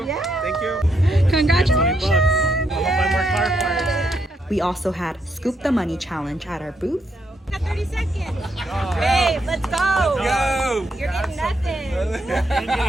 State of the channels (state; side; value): normal; both; correlation 0.78